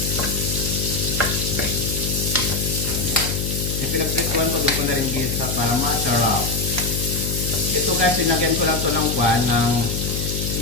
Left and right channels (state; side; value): noise; left; hum, 2 dB below the sound